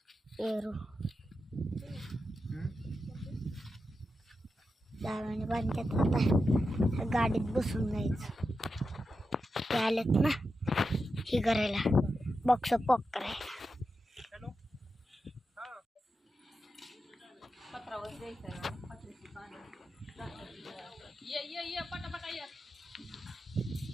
पेरू दाव्याने बांधतात. आता गाडीत बसून जायचं. ते आलेत ना हे करायला, बॉक्स पॉक करायला.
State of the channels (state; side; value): normal; both; correlation 0.89